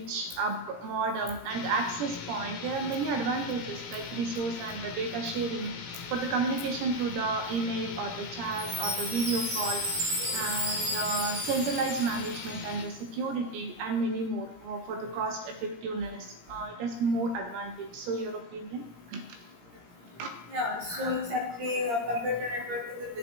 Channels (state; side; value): late; left; 17 ms